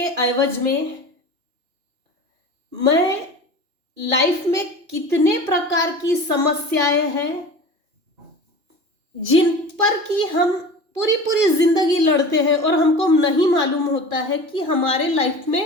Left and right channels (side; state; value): left; late; 2.8 ms